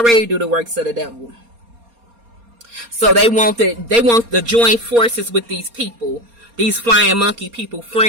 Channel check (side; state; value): left; late; 4.3 ms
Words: do the works of the devil. So they want to join forces with these people, these flying monkey people,